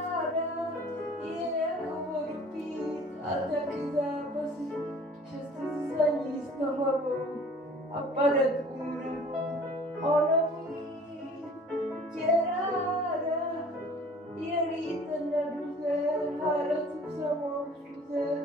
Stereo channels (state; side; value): normal; both; correlation 0.49